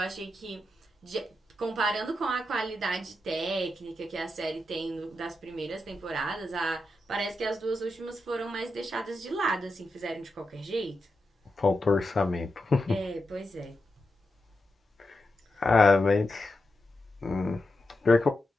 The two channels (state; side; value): normal; both; correlation 0.88